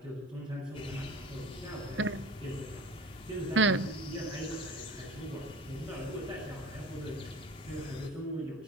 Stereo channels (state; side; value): normal; both; correlation 0.39